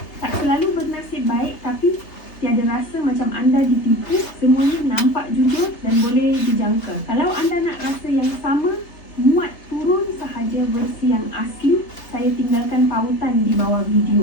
tak selalu bernasib baik tapi tiada rasa macam anda ditipu, semuanya nampak jujur dan boleh dijangka. Kalau anda nak rasa yang sama, muat turun sahaja versi yang asli, saya tinggalkan pautan di bawah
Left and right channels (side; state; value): right; late; 3.3 ms